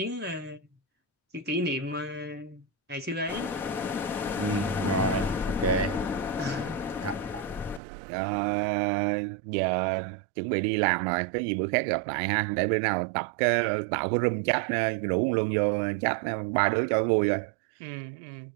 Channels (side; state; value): left; drops out; at 7.8 s